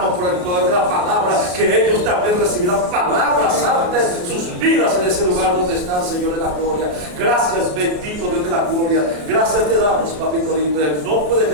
por el poder de la palabra que ellos también recibirán palabras santas en sus vidas en ese lugar donde están, Señor de la gloria. Gracias, bendito Dios de la gloria. Gracias te damos, papito lindo. En el nombre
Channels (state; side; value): late; left; 33 ms